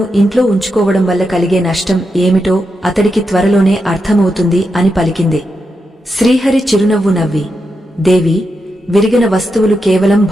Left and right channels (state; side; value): normal; both; correlation 0.86